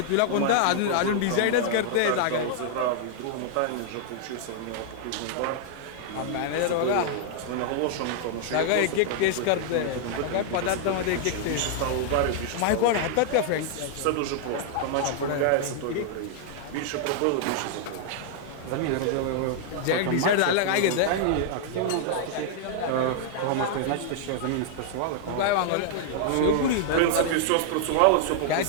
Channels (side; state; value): both; different; correlation -0.01